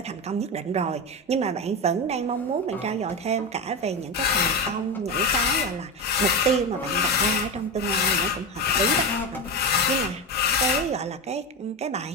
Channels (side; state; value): both; normal; correlation 0.18